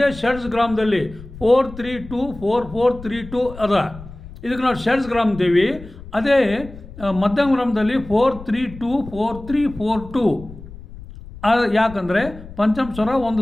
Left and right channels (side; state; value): left; noise; rumble, 16 dB below the sound